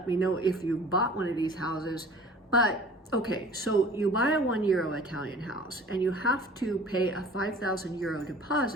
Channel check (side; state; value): both; normal; correlation 0.46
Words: me know if you bought one of these houses. But okay, so you buy a €1 Italian house and you have to pay a €5,000